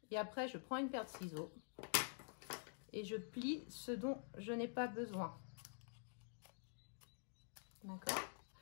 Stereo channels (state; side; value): silent; right; digital silence